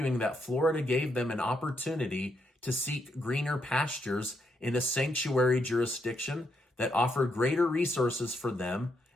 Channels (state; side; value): normal; both; correlation 0.79